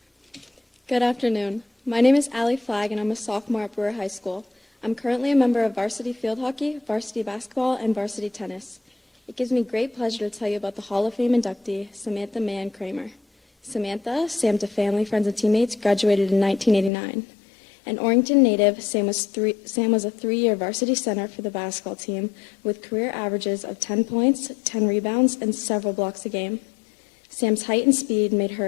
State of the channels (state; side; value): drops out; right; at 16.9 s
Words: Good afternoon. My name is Allie Flagg, and I'm a sophomore at Brewer High School. I'm currently a member of varsity field hockey, varsity basketball, and varsity tennis. It gives me great pleasure to tell you about the Hall of Fame inductee, Sammantha Mann Kramer. Sammantha, Sam to family, friends, and teammates, graduated in 1989. An Orrington native, Sam was a three-year varsity center for the basketball team with career averages of 10 points, 10 rebounds, and several blocks a game. Sam's height and speed made